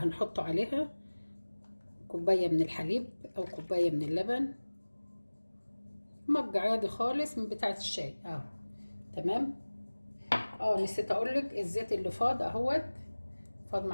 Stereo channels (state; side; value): inverted; both; correlation -1.00